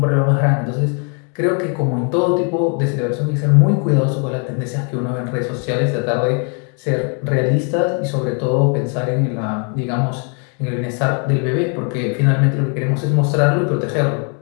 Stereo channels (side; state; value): right; quieter; 39.2 dB